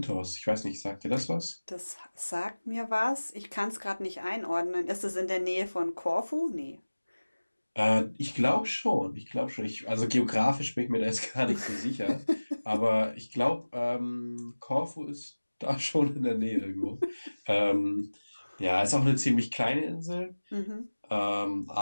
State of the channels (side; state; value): both; inverted; correlation -1.00